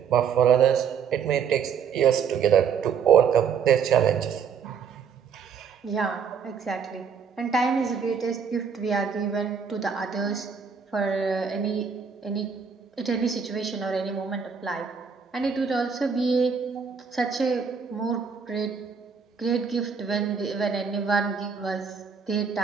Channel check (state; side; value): quieter; left; 6.5 dB